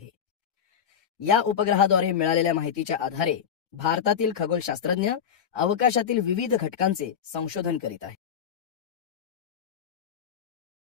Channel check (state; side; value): quieter; right; 7.9 dB